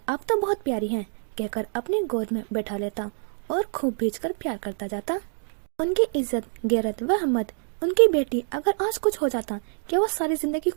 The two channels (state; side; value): silent; left; 61 dB below the other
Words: آپ تو بہت پیاری ہیں کہہ کر اپنی گود میں بیٹھا لیتا اور خوب بھیج کر پیار کرتا جاتا۔ ان کی عزت، غیرت و ہمت، ان کی بیٹی، اگر آج کچھ ہو جاتا کیا وہ ساری زندگی